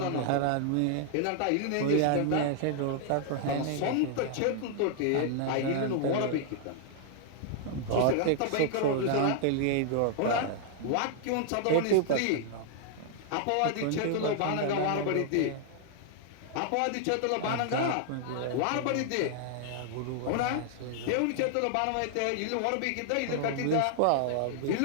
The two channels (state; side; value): different; both; correlation -0.01